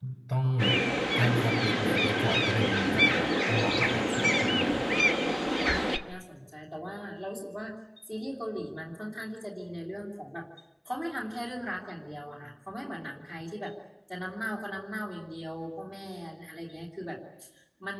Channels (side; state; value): both; identical; correlation 1.00